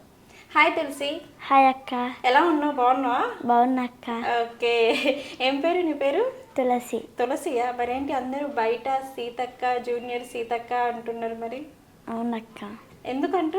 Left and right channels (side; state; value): both; identical; correlation 1.00